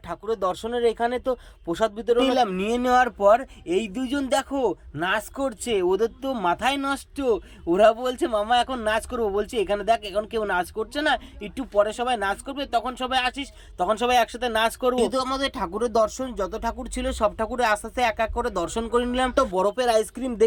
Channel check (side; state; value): both; identical; correlation 1.00